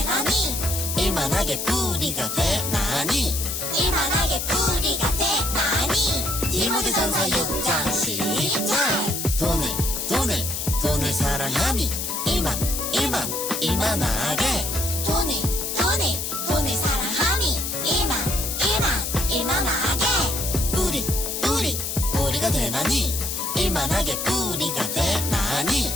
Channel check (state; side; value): noise; left; hiss, 3 dB below the sound